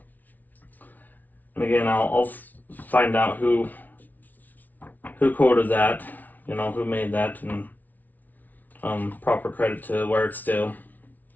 And again, I'll find out who quoted that, you know, who made that, and proper credit to where it's due.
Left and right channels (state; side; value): late; right; 0.079 ms